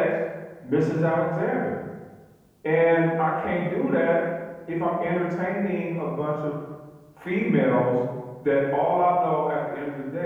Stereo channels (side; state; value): both; identical; correlation 1.00